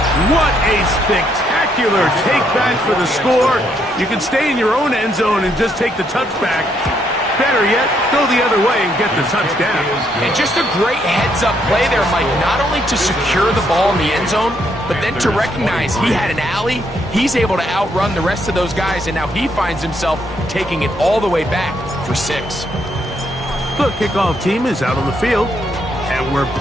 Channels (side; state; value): both; normal; correlation 0.74